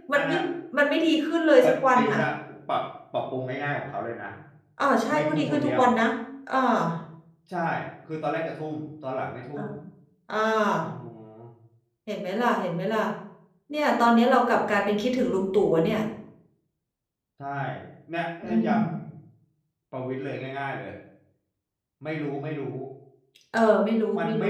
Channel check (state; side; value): identical; both; correlation 1.00